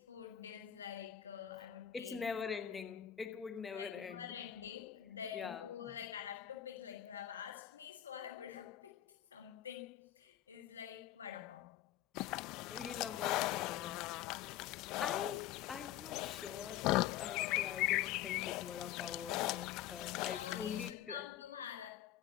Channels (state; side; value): quieter; right; 12.2 dB